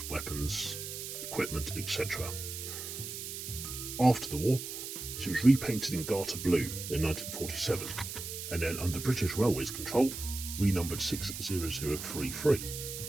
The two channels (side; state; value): right; noise; hiss, 7 dB below the sound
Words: weapons, equipment, etc. After the war, she was repainted in garter blue in 1947, and then under British Railways control, renumbered 60033.